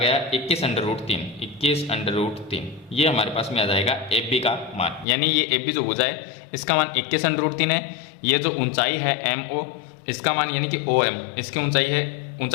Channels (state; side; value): drops out; right; at 5.1 s